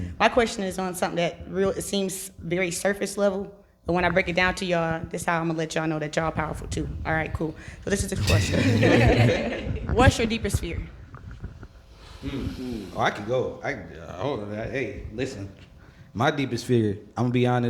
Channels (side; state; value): both; identical; correlation 1.00